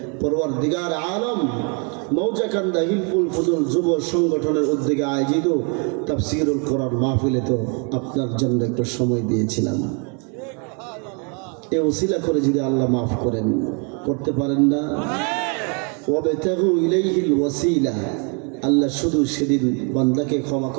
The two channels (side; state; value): left; quieter; 36.4 dB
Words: পরওয়ারদিগার আলম মৌজাকান্দা হিলফুল ফুজুল যুব সংগঠনের উদ্যোগে আয়োজিত তাফসিরুল কোরআন মাহফিলে তো আপনার জন্য একটু সময় দিয়েছিলাম। এ ওসিলা করে যদি আল্লাহ মাফ করেন, করতে পারেন না? ওয়াবতাগু ইলাইহিল ওয়াসিলা, আল্লাহ শুধু সেদিন বান্দাকে ক্ষমা